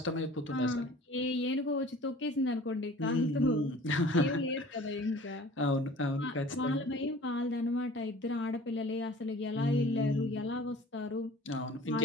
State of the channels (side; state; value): both; normal; correlation 0.46